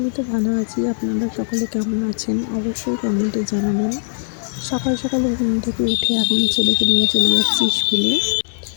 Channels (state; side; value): silent; right; 62 dB below the other